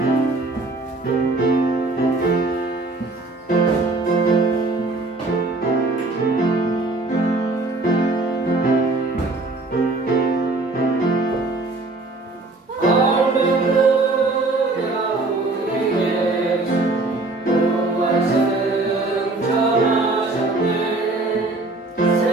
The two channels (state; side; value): quieter; left; 3.2 dB